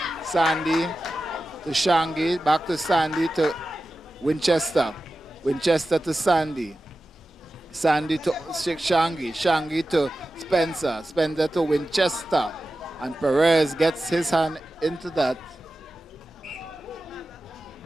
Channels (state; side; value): normal; both; correlation 0.94